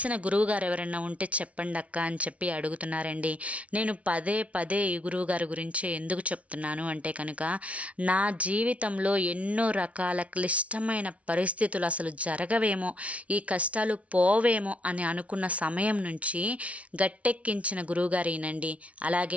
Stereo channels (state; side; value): late; left; 0.065 ms